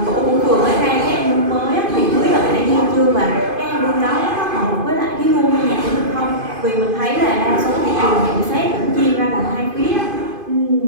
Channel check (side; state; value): left; late; 2.5 ms